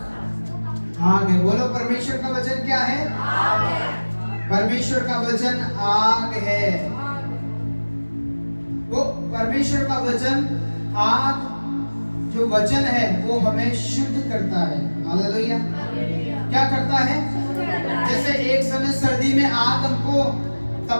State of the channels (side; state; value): both; inverted; correlation -1.00